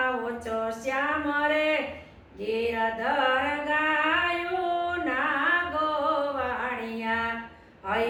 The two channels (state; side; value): identical; both; correlation 1.00